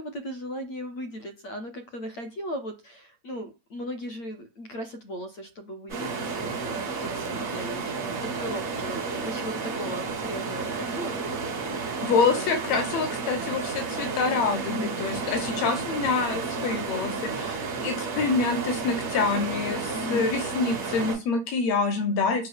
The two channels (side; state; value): right; late; 8.7 ms